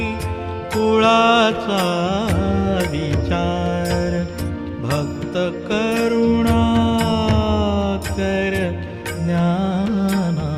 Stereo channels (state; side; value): identical; both; correlation 1.00